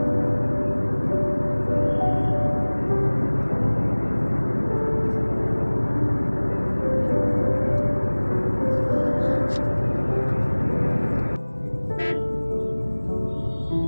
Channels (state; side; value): inverted; both; correlation -1.00